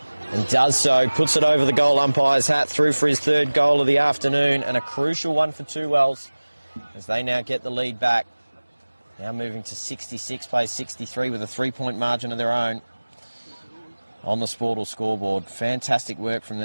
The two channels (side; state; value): both; inverted; correlation -1.00